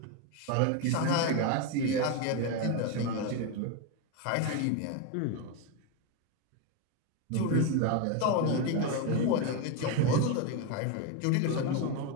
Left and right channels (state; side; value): different; both; correlation 0.02